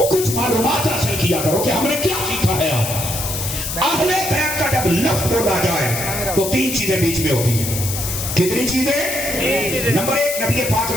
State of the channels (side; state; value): left; noise; hiss, 5 dB below the sound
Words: کچھ معلومات حاصل کیا کرو کہ ہم نے کیا سیکھا ہے۔ آپ اہل بیت کا جب لفظ بولا جائے تو تین چیزیں بیچ میں ہوتی ہیں۔ کتنی چیزیں؟ نمبر ایک، نبی پاک